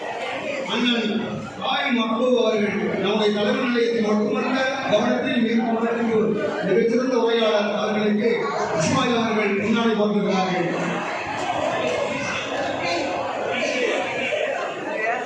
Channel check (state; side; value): identical; both; correlation 1.00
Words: அண்ணன் மக்பூப் அவர்கள் நம்முடைய தலைவர் நிலையத்தில் மட்டுமல்ல கவனத்தில் மிகச்சிறந்த உரையாளர் அவர்களுக்கு இஸ்மாயில் அவர்கள் முன்னாடி கொண்டிருக்கிறார்கள்.